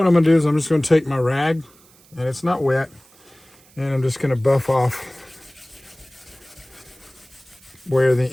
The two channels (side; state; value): right; noise; hiss, 28 dB below the sound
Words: I'm going to do is I'm just going to take my rag, and it's not wet, and I'm just going to buff off where the